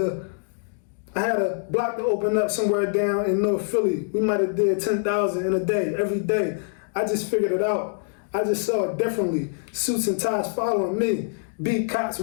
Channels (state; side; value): silent; right; digital silence